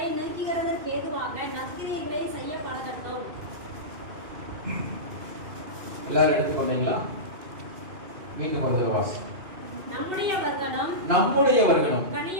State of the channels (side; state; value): left; late; 2.5 ms